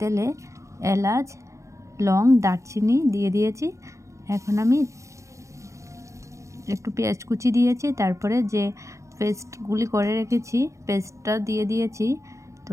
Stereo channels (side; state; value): left; late; 0.15 ms